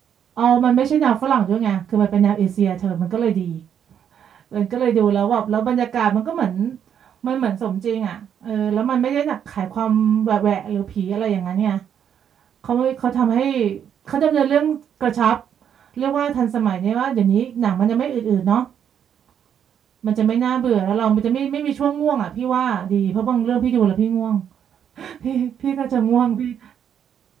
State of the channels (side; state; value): left; quieter; 8.7 dB